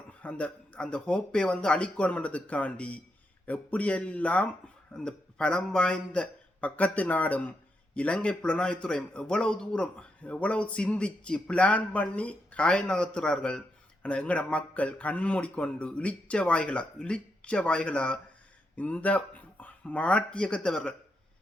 அந்த அந்த ஹோப்பை அழிக்கணும்ன்றதுக்காண்டி எப்படியெல்லாம் அந்த பலம் வாய்ந்த பக்கத்து நாடும் இலங்கை புலனாய்வுத்துறையும் எவ்வளவு தூரம் எவ்வளவு சிந்திச்சு பிளான் பண்ணி காய நகர்த்துறார்கள். ஆனால் எங்கட மக்கள் கண்மூடிக்கொண்டு இழிச்ச வாய்களா இந்த மாட்டியக்கத்தவர்கள்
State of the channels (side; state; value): both; normal; correlation 0.83